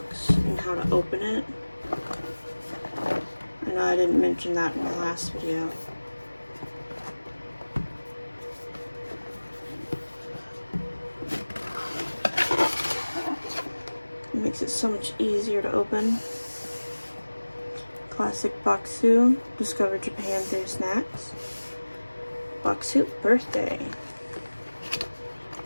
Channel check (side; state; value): both; inverted; correlation -1.00